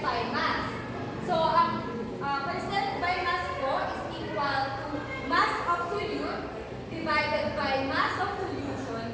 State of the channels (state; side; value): identical; both; correlation 1.00